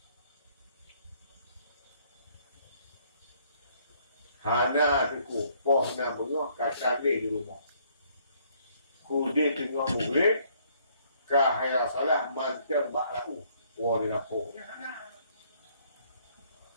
Hana diku, poh na bengok kacang di rumah. Kudi tengok murid, kahaya salah mancam bakrau. Wali lapor. Hana.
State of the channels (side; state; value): both; inverted; correlation -0.65